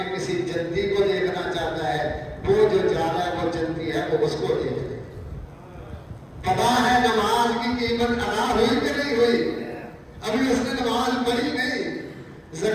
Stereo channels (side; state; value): both; identical; correlation 1.00